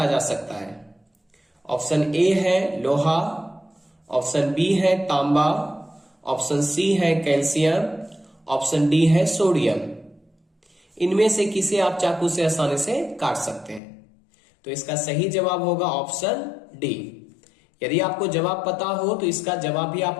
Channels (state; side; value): drops out; right; at 13.8 s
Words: जा सकता है। ऑप्शन ए है लोहा, ऑप्शन बी है तांबा, ऑप्शन सी है कैल्शियम, ऑप्शन डी है सोडियम। इनमें से किसे आप चाकू से आसानी से काट सकते हैं? तो इसका सही जवाब होगा ऑप्शन डी। यदि आपको जवाब पता हो तो इसका जवाब भी